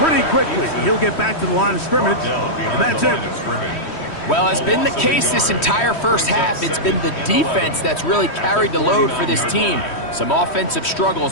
quickly. He'll get back to the line of scrimmage. And that's it. Well, has been the case this entire first half. It's been the defense that's really carried the load for this team. Some offensive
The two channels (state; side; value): late; right; 3.1 ms